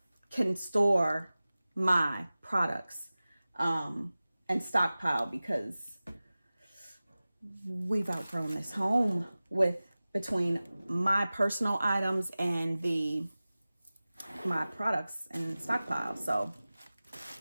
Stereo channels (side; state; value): both; inverted; correlation -0.97